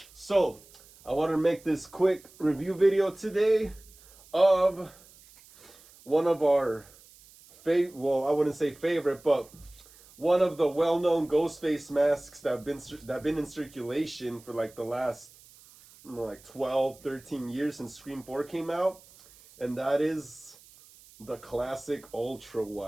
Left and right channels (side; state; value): right; noise; hiss, 24 dB below the sound